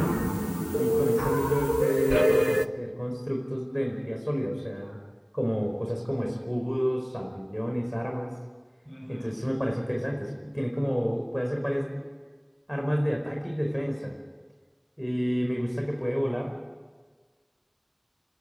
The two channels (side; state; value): both; identical; correlation 1.00